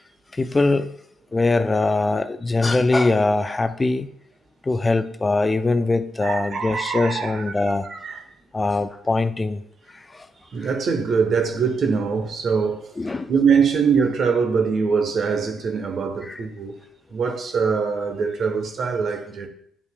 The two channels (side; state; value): both; normal; correlation 0.84